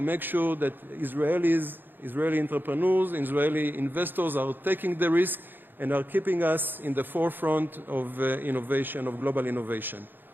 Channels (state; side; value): late; left; 0.094 ms